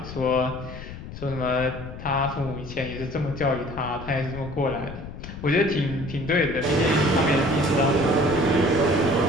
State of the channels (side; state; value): left; noise; rumble, 12 dB below the sound